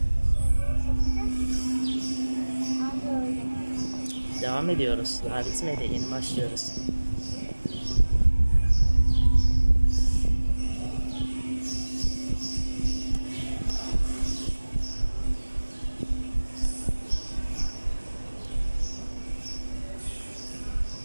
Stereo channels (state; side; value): inverted; both; correlation -1.00